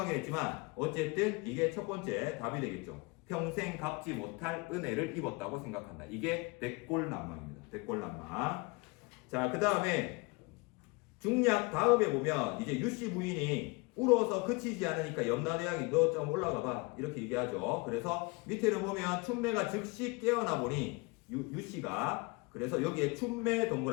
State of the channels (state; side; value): quieter; right; 27.4 dB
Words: 했지만 어쨌든 이게 첫 번째 답이 되겠죠. 평생 갚지 못할 은혜를 입었다고 생각한다. 이게 백골난망입니다. 백골난망. 자, 그 다음에 중략 다음에 보면 이제 유씨 부인이 울어서 그치지 않으니까 염라대왕이 너 좀 올라가 봐 이렇게 얘기하죠. 그래서 밑에를 보면 춘매가 즉시 깨어나 보니 유씨가 그래서 여기에 춘매